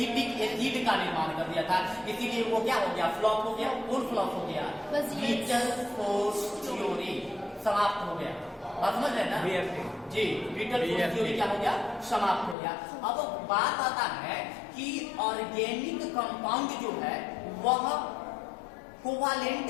एसिड का निर्माण कर दिया था। इसीलिए वो क्या हो गया? फ्लॉप हो गया। कौन फ्लॉप हो गया? विटल फोर्स थ्योरी समाप्त हो गया। बात समझ रहे हैं ना? जी, विटल फोर्स थ्योरी क्या हो गया? समाप्त हो गया। अब बात आता है कि ऑर्गेनिक कंपाउंड जो है वह कोवैलेंट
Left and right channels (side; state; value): right; drops out; at 12.6 s